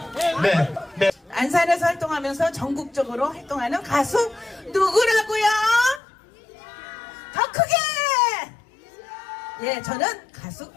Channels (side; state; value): right; drops out; at 6.0 s